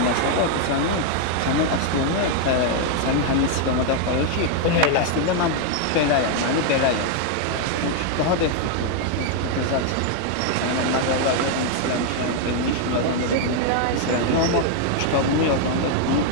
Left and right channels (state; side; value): different; both; correlation 0.00